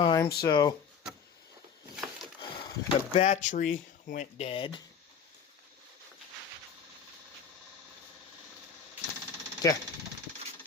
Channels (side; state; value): right; quieter; 6.7 dB